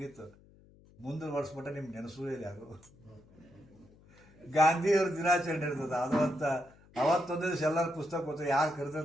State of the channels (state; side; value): noise; left; hum, 26 dB below the sound